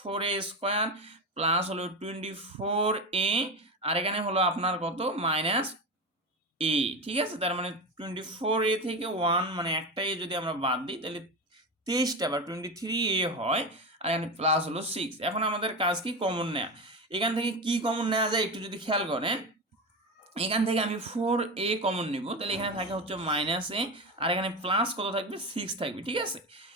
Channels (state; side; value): normal; both; correlation 0.21